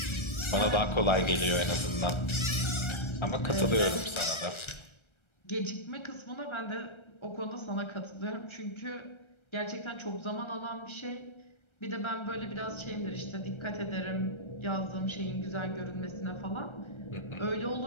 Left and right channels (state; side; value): late; right; 1.3 ms